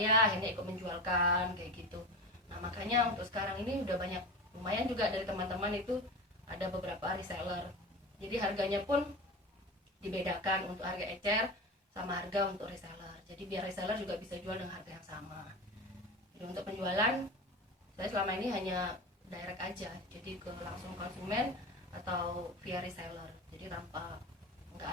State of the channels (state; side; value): normal; both; correlation 0.28